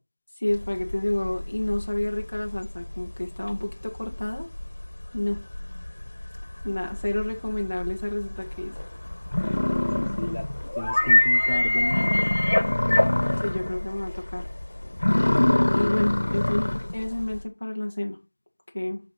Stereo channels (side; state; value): both; inverted; correlation -1.00